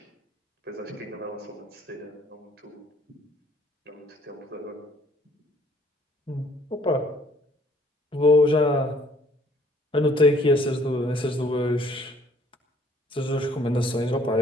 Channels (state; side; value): normal; both; correlation 0.61